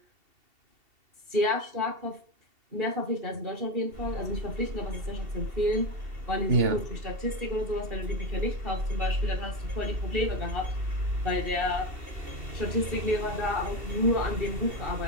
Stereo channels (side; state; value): left; late; 2.7 ms